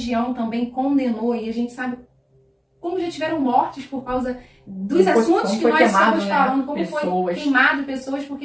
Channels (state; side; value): identical; both; correlation 1.00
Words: também condenou, e a gente sabe como já tiveram mortes por causa dos assuntos que nós estamos falando, como foi queimado pessoas